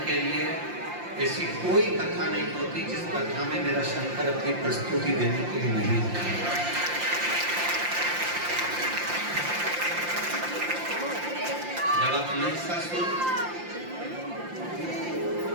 के लिए ऐसी कोई कथा नहीं होती जिस कथा में मेरा शंकर अपनी प्रस्तुति देने के लिए नहीं आता। जब आप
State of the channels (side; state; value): left; late; 5.7 ms